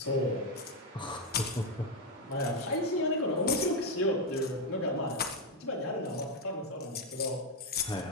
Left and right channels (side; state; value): both; normal; correlation 0.05